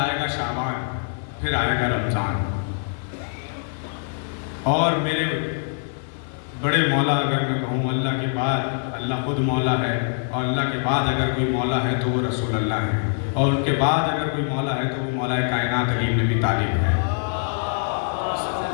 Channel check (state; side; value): silent; right; 63 dB below the other